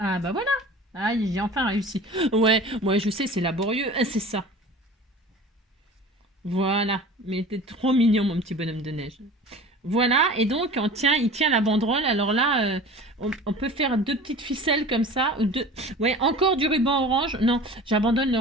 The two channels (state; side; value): normal; both; correlation 0.40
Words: bah voilà. Ah, j'ai enfin réussi. Ouais, moi je sais, c'est laborieux. C'est ça. Voilà. Mais t'es trop mignon, mon petit bonhomme de neige. Voilà, et donc il tient la banderole. Alors là, on peut faire deux petites ficelles comme ça. Ou deux... Ouais, encore du ruban orange. Non, j'abandonne le